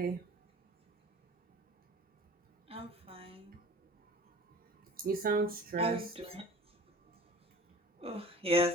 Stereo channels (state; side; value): normal; both; correlation 0.41